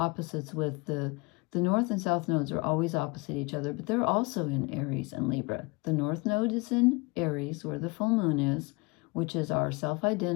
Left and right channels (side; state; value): right; quieter; 27.2 dB